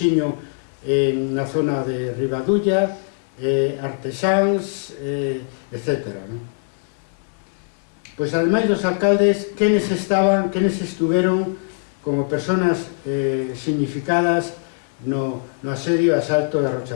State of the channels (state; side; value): silent; right; digital silence